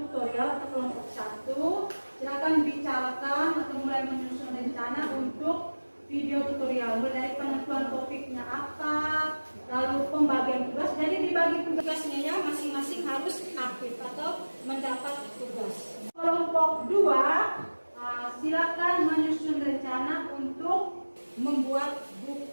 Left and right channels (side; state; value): both; inverted; correlation -1.00